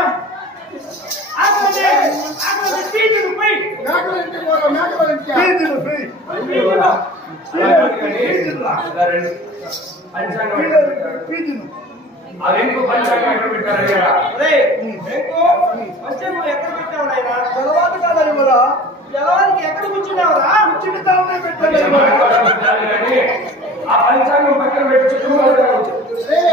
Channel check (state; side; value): normal; both; correlation 0.42